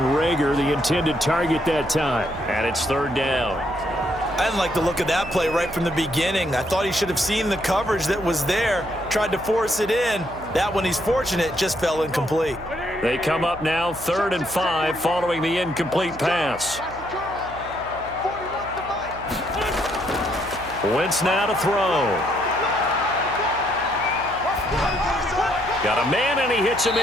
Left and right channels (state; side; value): noise; right; hum, 16 dB below the sound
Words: Reagor, the intended target that time. And it's 3rd down. I didn't like the look of that play right from the beginning. I thought he should have seen the coverage that was there, tried to force it in. That one, he's fortunate, just fell incomplete. They come up now 3rd and 5 following the incomplete pass. Wentz now to throw. Got a man, and he hits him